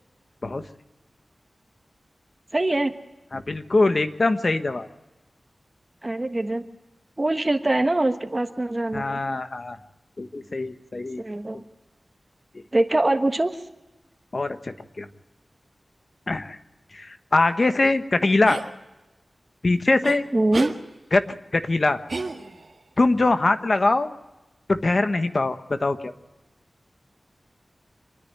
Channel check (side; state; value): both; normal; correlation 0.97